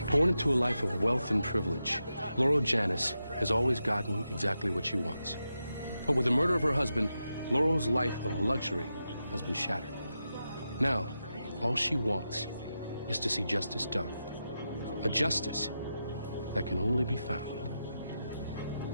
Born into a life of wealth and privilege, Laurel Janis has always gotten exactly what she wants. But with the murder of her husband, Laurel's life of luxury has been shattered. Now, all she wants is to see justice done. A justice that can only be found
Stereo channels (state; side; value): inverted; both; correlation -0.88